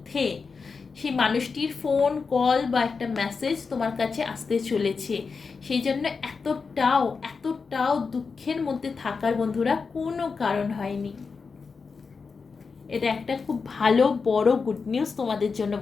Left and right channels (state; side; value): quieter; right; 5.0 dB